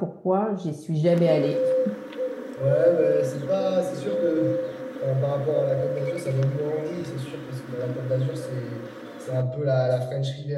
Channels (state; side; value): identical; both; correlation 1.00